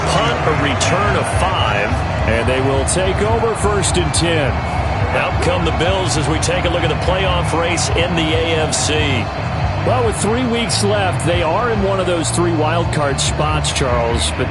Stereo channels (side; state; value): both; identical; correlation 1.00